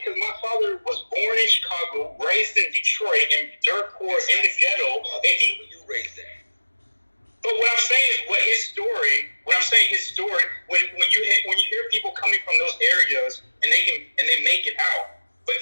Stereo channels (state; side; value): inverted; both; correlation -1.00